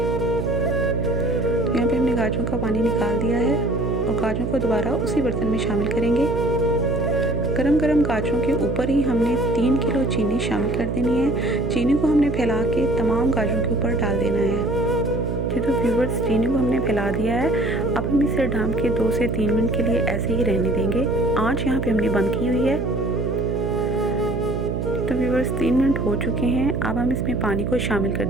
यहाँ पे हमने गाजरों का पानी निकाल दिया है और गाजरों को दोबारा उसी बर्तन में शामिल करेंगे। गरम गरम गाजरों के ऊपर ही हमने 3 किलो चीनी शामिल कर देनी है। चीनी को हमने फैला के तमाम गाजरों के ऊपर डाल देना है। तो व्यूअर्स, चीनी को हमने फैला दिया है। अब हम इसे ढक के 2 से 3 मिनट के लिए ऐसे ही रहने देंगे। आँच यहाँ पे हमने बंद की हुई है। तो व्यूअर्स, 3 मिनट हो चुके हैं। अब हम इसमें पानी को शामिल कर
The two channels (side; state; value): right; noise; hum, 2 dB below the sound